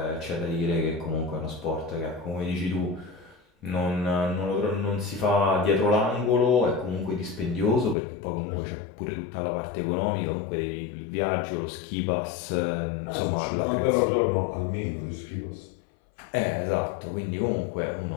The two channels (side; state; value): right; drops out; at 8.0 s